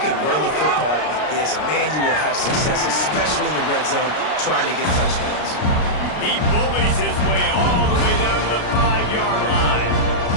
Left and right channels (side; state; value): right; late; 33 ms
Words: run the football like this, man, you will have success, especially in the red zone, trying to get touchdowns. He bullies his way all the way down to the 5-yard line.